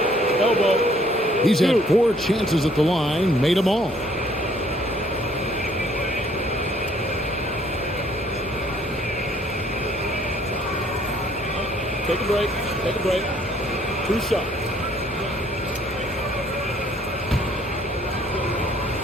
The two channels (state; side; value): normal; both; correlation 0.62